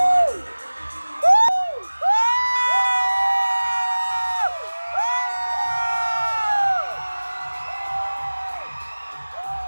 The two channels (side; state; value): both; inverted; correlation -1.00